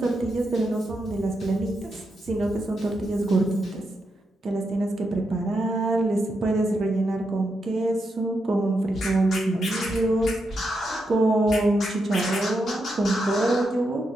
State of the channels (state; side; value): normal; both; correlation 0.84